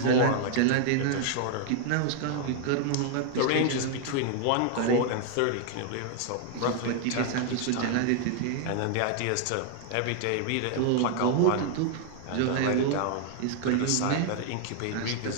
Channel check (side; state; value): both; different; correlation 0.00